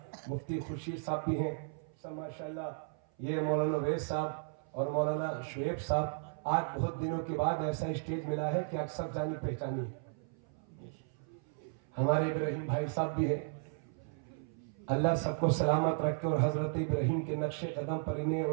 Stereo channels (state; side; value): silent; left; 54 dB below the other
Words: مفتی خورشید صاحب بھی ہیں سب ماشاءاللہ. یہ مولانا ویس صاحب اور مولانا شعیب صاحب, آج بہت دنوں کے بعد ایسا اسٹیج ملا ہے کہ اکثر جانی پہچانی ہے. ہمارے ابراہیم بھائی صاحب بھی ہیں, اللہ سب کو سلامت رکھے اور حضرت ابراہیم کے نقش قدم پر انہیں